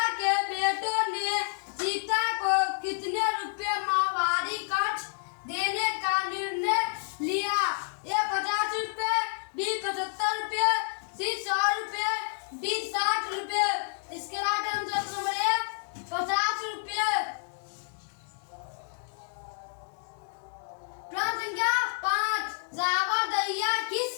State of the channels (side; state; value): right; silent; digital silence